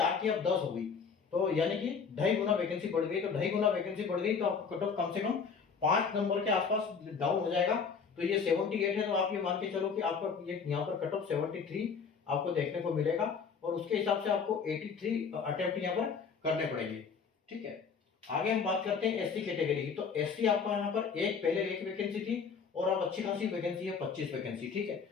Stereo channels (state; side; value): quieter; right; 5.8 dB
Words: की अब 10 हो गई, तो यानी कि 2.5 गुना वैकेंसी बढ़ गई। तो 2.5 गुना वैकेंसी बढ़ गई तो आपको कट ऑफ कम से कम 5 नंबर के आसपास डाउन हो जाएगा। तो ये 78 है, तो आप ये मान के चलो कि आपका ये यहाँ पर कट ऑफ 73 आपको देखने को मिलेगा और उसके हिसाब से आपको 83 अटेम्प्ट यहाँ पर करने पड़ेंगे, ठीक है। आगे हम बात करते हैं एससी कैटेगरी की। तो एससी आपका यहाँ पर पहले एक वैकेंसी थी और अब अच्छी खासी वैकेंसी है, 25 वैकेंसी, ठीक है।